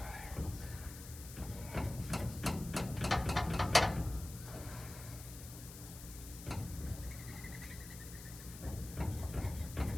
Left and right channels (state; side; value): noise; left; hiss, 13 dB below the sound